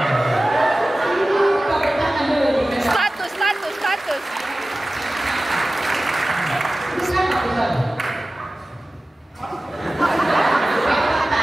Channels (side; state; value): both; normal; correlation 0.96